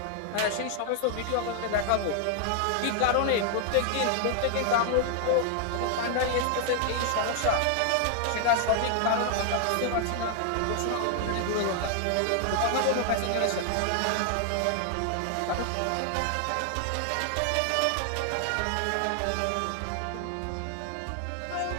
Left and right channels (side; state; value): both; different; correlation 0.00